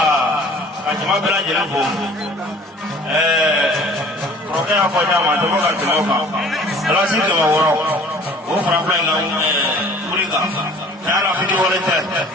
ajima bela jela bo roke ya ko nyama to ga tumo ka ala si to woro o fra fra na kuriga ala fiti wala te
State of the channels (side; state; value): both; normal; correlation 0.49